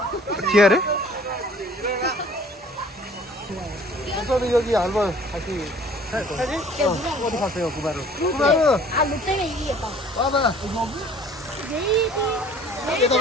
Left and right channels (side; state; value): both; normal; correlation 0.52